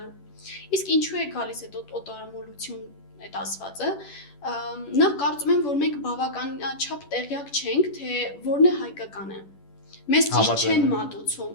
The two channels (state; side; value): late; right; 10 ms